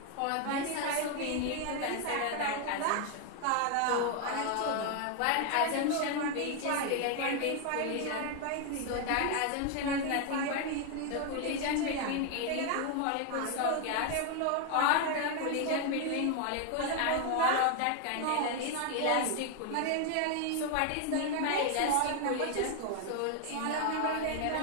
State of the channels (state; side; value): different; both; correlation 0.01